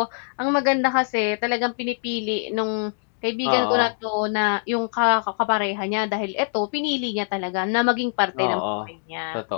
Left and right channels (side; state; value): right; silent; 63 dB below the other